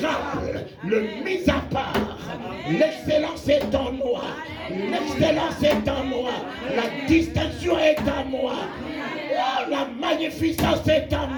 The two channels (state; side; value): identical; both; correlation 1.00